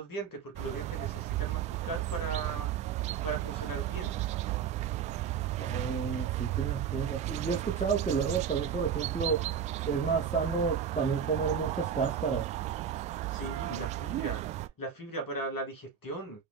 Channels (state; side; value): quieter; left; 7.4 dB